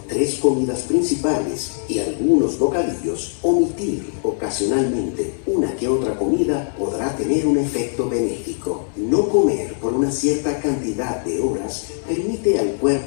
3 comidas principales y algunos bocadillos, omitir ocasionalmente una que otra comida podrá tener un efecto benéfico. No comer por una cierta cantidad de horas permite al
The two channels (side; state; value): right; silent; digital silence